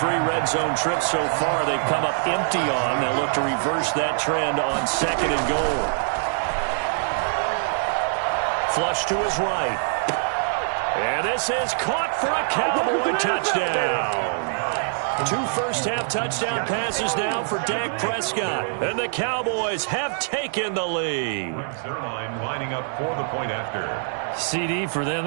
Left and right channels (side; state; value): left; silent; digital silence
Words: red zone trips so far they've come up empty on. They'll look to reverse that trend on 2nd and goal. Flush to his right. And this is caught for a Cowboy touchdown. 2 first-half touchdown passes now for Dak Prescott. And the Cowboys have taken the lead. Zerline lining up for the point after. CD, for them,